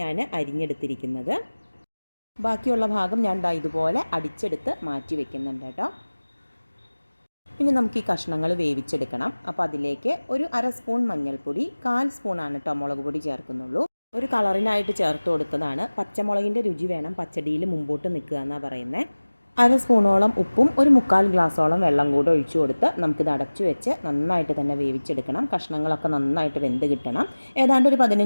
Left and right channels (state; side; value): inverted; both; correlation -1.00